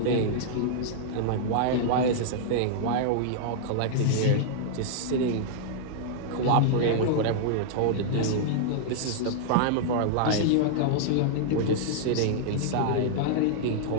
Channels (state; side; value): different; both; correlation -0.01